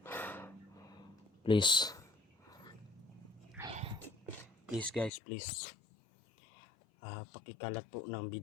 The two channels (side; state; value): right; drops out; at 5.1 s